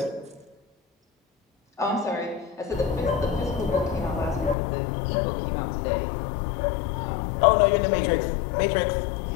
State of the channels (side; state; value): right; drops out; at 4.5 s